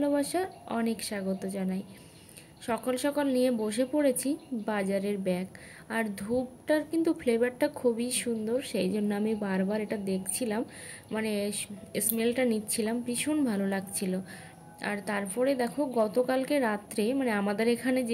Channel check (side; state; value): both; identical; correlation 1.00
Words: অনেক স্বাগত জানাই। সকাল সকাল নিয়ে বসে পড়েছি বাজারের ব্যাগ, আর ধূপটার কিন্তু ফ্লেভারটা খুবই সুন্দর, সেই জন্য আমি বারবার এটা দেখছিলাম, মানে স্মেলটা নিচ্ছিলাম, ভীষণ ভালো লাগছিল। আর তারপরে দেখো গতকালকে রাত্রে, মানে আমাদের এখানে